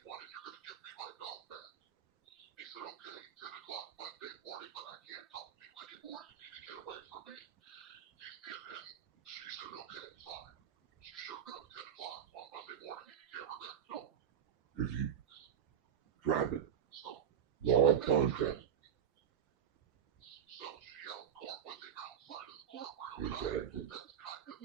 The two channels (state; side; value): quieter; left; 9.0 dB